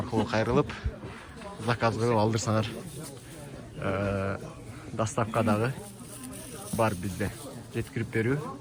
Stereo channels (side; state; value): both; identical; correlation 1.00